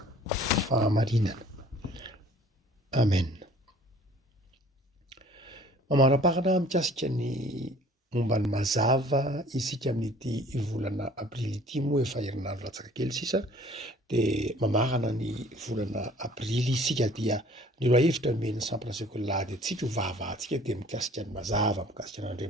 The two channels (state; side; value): normal; both; correlation 0.52